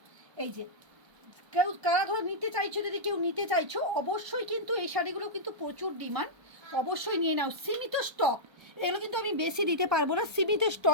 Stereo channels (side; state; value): left; late; 1.3 ms